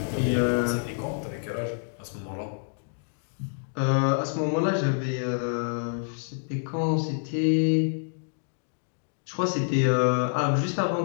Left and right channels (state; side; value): silent; right; digital silence